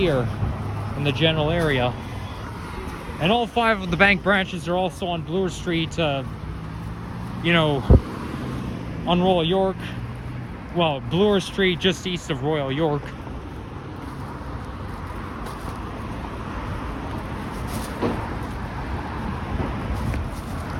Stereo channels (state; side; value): identical; both; correlation 1.00